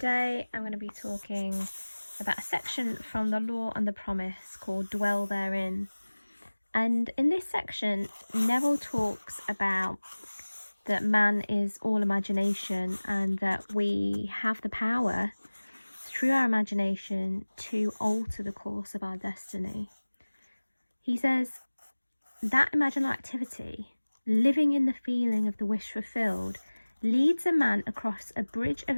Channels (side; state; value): both; inverted; correlation -1.00